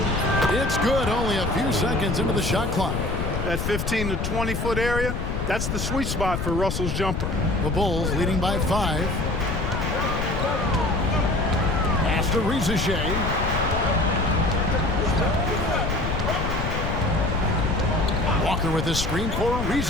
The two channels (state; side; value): noise; left; rumble, 2 dB below the sound